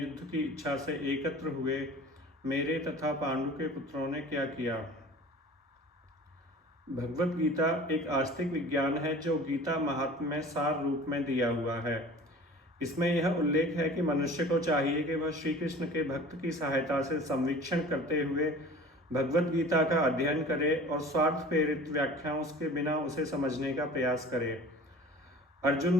की इच्छा से एकत्र हुए मेरे तथा पांडु के पुत्रों ने क्या किया। भगवत गीता एक आस्तिक विज्ञान है जो गीता महात्म्य में सार रूप में दिया हुआ है। इसमें यह उल्लेख है कि मनुष्य को चाहिए कि वह श्री कृष्ण के भक्त की सहायता से संवीक्षण करते हुए भगवत गीता का अध्ययन करे और स्वार्थ प्रेरित व्याख्याओं के बिना उसे समझने का प्रयास करे। अर्जुन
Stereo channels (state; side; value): normal; both; correlation 0.43